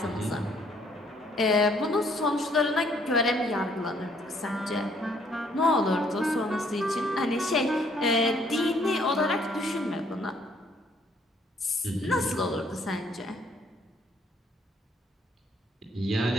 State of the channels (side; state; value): both; normal; correlation 0.65